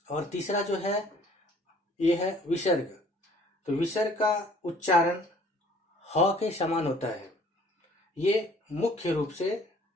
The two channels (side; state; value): both; normal; correlation 0.56